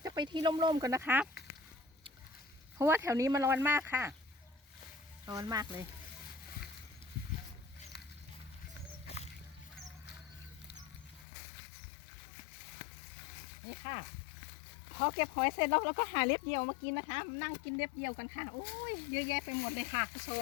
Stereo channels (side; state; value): right; drops out; at 11.2 s